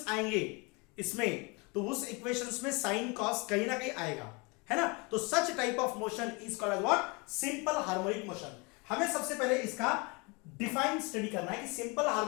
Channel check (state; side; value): quieter; right; 28.9 dB